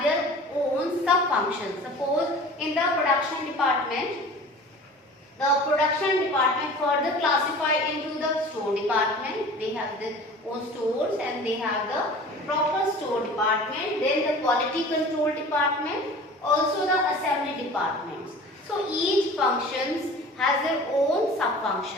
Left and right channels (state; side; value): normal; both; correlation 0.41